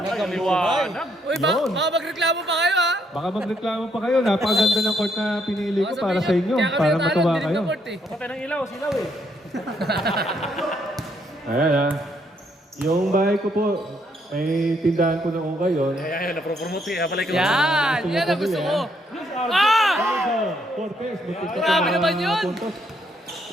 liwanag. Uy, Yun. baka magreklamo pa kayo ha? Baka magreklamo pa kayo. Napakaganda ng court na pinili ko Baka para sa sabihin inyo. kaya kami Para natalo, matuwa dinig kayo. ng court, eh. Kapatay ng ilaw, silaw eh. Ayan ha. Yung bahay ko po, may tindahan ko ng ukay yun. Ayan, napropromote eh. Palay ka Yan ang gusto ko. Ah! Cortez, Grabe naman yun.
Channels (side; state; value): both; normal; correlation 0.72